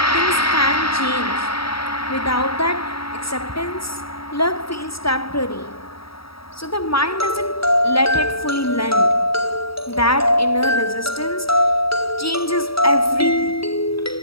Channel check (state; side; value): late; right; 0.75 ms